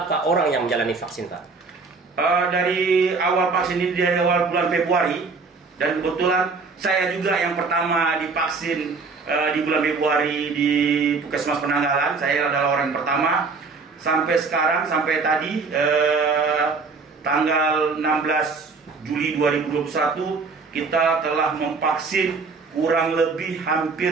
orang yang menjalani vaksin Pak? Dari awal vaksin ini, dari awal bulan Februari, dan kebetulan saya juga yang pertama divaksin di bulan Februari di Puskesmas Penanggalan. Saya adalah orang yang pertama. Sampai sekarang, sampai tadi tanggal 16 Juli 2021, kita telah memvaksin kurang lebih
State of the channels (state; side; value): quieter; left; 4.5 dB